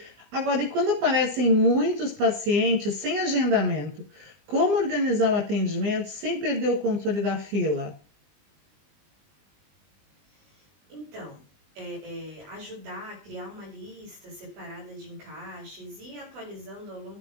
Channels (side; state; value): left; late; 20 ms